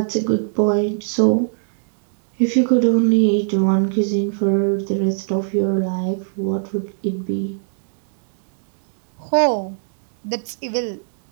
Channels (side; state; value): left; silent; digital silence